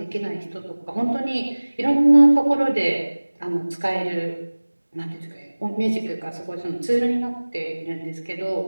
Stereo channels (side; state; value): both; inverted; correlation -1.00